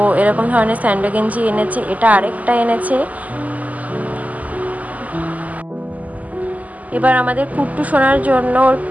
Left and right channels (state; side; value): late; left; 0.076 ms